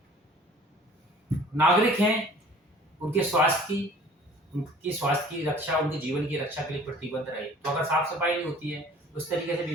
नागरिक हैं उनके स्वास्थ्य की रक्षा, उनके जीवन की रक्षा के लिए प्रतिबद्ध रहे। तो अगर साफ सफाई नहीं होती है उस तरीके से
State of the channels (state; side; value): normal; both; correlation 0.49